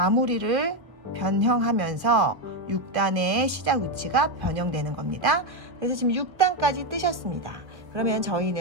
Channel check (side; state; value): left; late; 1.2 ms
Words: 변형하면서 6단의 시작 위치가 변형되는 겁니다. 그래서 지금 6단까지 뜨셨습니다. 그러면